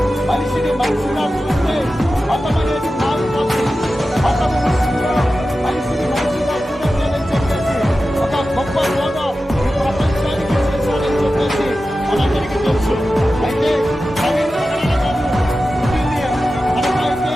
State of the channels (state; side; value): normal; both; correlation 0.93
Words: మనిషిని మనిషిగా చూస్తే మతం అనేది మారిపోతుంది. మతము విషయంలో మనిషిని మనిషిగా చూడండి అని చెప్పేసి ఒక గొప్ప బోధ ఈ ప్రపంచానికి చేశారని చెప్పేసి మనందరికీ తెలుసు. అయితే ప్రవీణ్ పగడాల గారు పుట్టింది మనకైతే